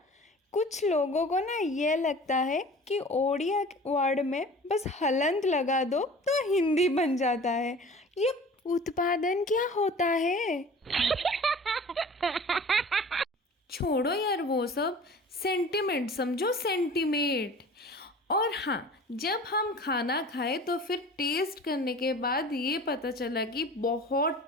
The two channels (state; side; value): normal; both; correlation 0.42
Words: कुछ लोगों को ना ये लगता है कि ओडिया वर्ड में बस हलंत लगा दो तो हिंदी बन जाता है। ये उत्पादन क्या होता है? छोड़ो यार वो सब, सेंटिमेंट समझो, सेंटिमेंट। और हाँ, जब हम खाना खाए तो फिर टेस्ट करने के बाद ये पता चला कि बहुत